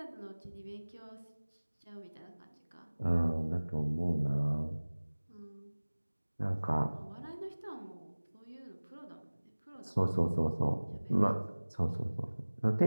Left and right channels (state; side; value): inverted; both; correlation -1.00